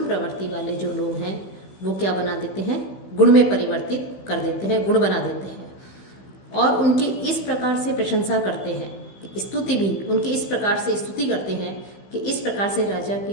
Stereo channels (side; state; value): right; late; 15 ms